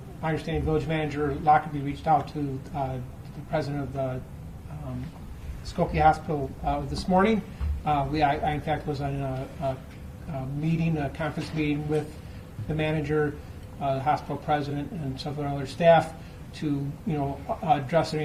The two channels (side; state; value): both; identical; correlation 1.00